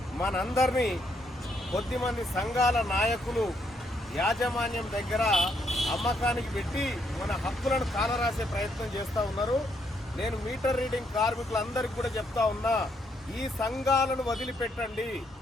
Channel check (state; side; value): normal; both; correlation 0.74